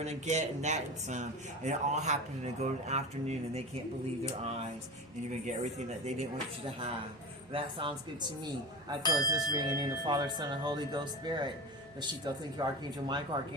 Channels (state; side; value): noise; right; hum, 27 dB below the sound